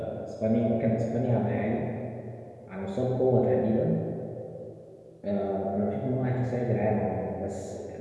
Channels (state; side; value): identical; both; correlation 1.00